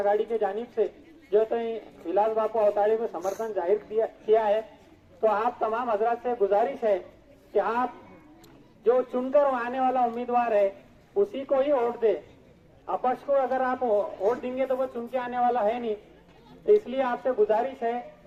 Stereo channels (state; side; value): identical; both; correlation 1.00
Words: के जानिब से जो है तो विलास बापू अवताड़े को समर्थन जाहिर किया है। तो आप तमाम हजरात से गुजारिश है कि आप जो चुनकर आने वाला उम्मीदवार है उसी को ही वोट दे। अपक्ष को अगर आप वोट देंगे तो वो चुन के आने वाला है नहीं। तो इसलिए आपसे गुजारिश है